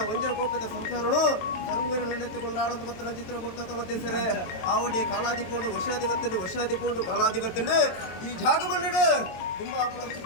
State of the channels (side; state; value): right; late; 22 ms